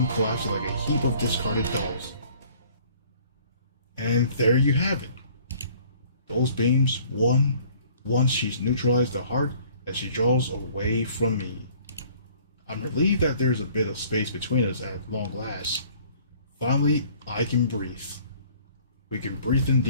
collapsing like a heap of discarded dolls. And there you have it. Those beams, once she's neutralized the heart, as she draws away from me. I'm relieved that there's a bit of space between us at long last. Finally, I can breathe. We can breathe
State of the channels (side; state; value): both; inverted; correlation -0.55